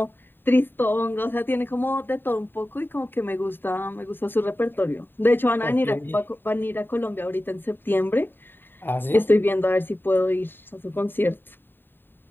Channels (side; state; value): right; late; 0.096 ms